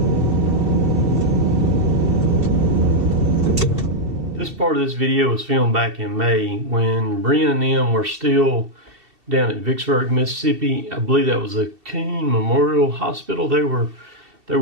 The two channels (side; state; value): left; late; 2.7 ms